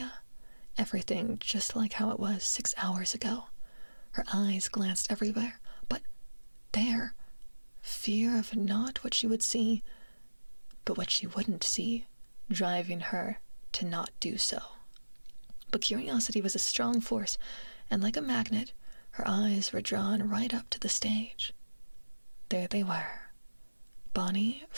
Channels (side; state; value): both; inverted; correlation -1.00